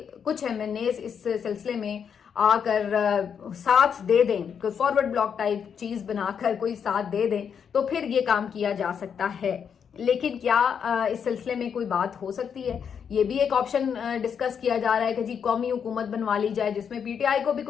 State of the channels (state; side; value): quieter; right; 7.3 dB